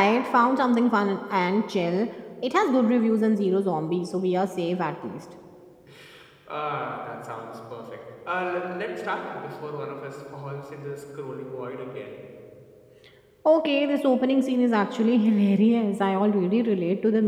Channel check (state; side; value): identical; both; correlation 1.00